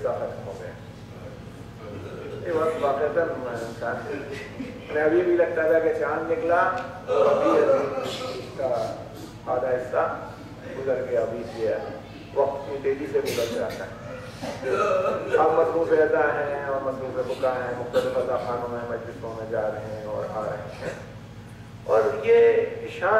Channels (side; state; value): both; identical; correlation 1.00